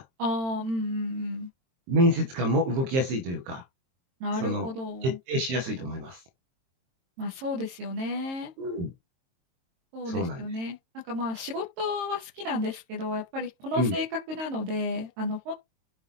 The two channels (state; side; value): late; left; 22 ms